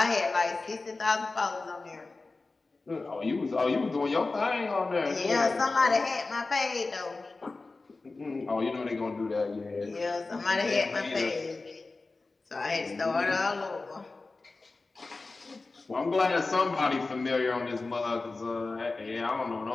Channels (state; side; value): quieter; right; 3.6 dB